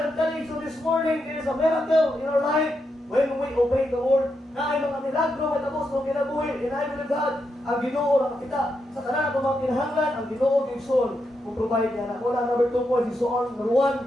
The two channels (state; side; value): normal; both; correlation 0.83